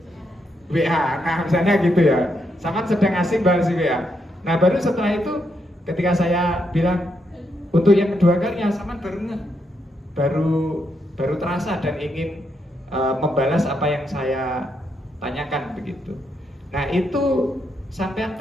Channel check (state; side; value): normal; both; correlation 0.80